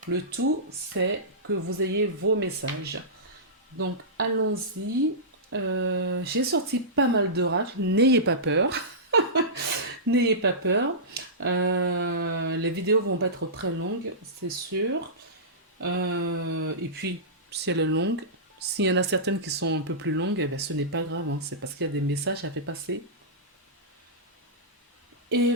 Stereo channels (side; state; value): both; normal; correlation -0.17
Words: Le tout, c'est que vous ayez vos messages. Donc allons-y. J'ai sorti pas mal d'oracles, n'ayez pas peur. N'ayez pas peur. Les vidéos vont pas être très longues, c'est sûr. Et puis, si elle est longue, s'il y en a certaines qui sont un peu plus longues, eh ben, ce n'est pas grave, hein. C'est parce qu'il y a des messages à faire passer. Et